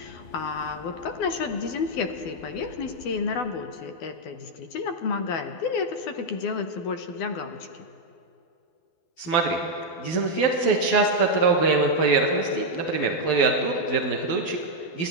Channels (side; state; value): right; late; 12 ms